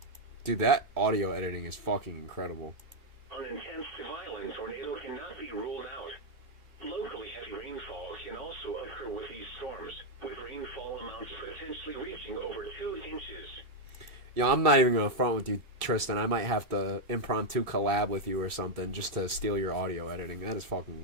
Dude, that audio editing is fucking incredible. An intense to violent tornado cannot be ruled out. Locally heavy rainfall can also occur with these storms, with rainfall amounts potentially reaching over 2 inches. Yo, I'm not even gonna front with you, Tristan. I might have to impromptu collab with you or something just to steal your audio editing. That is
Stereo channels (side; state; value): left; late; 2.8 ms